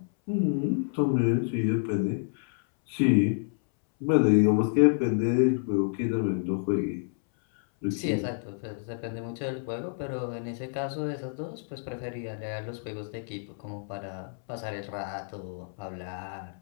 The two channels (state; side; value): silent; right; 59 dB below the other